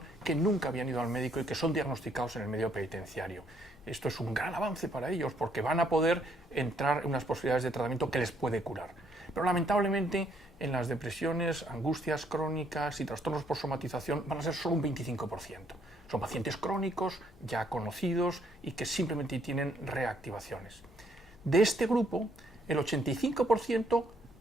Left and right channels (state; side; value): normal; both; correlation 0.69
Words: que nunca habían ido al médico y que son diagnosticados en el medio penitenciario. Esto es un gran avance para ellos porque van a poder entrar en unas posibilidades de tratamiento que les puede curar. Pero lamentablemente en las depresiones, angustias crónicas y trastornos por somatización van a ser solo un 25%. Son pacientes crónicos, ya conocidos y que simplemente tienen reactivaciones. De este grupo, el 85%